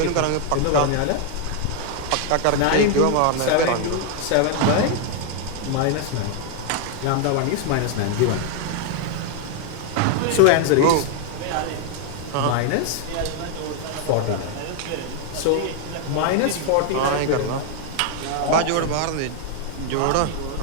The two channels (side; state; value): both; different; correlation 0.00